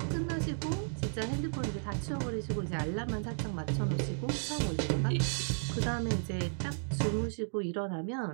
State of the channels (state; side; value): silent; left; digital silence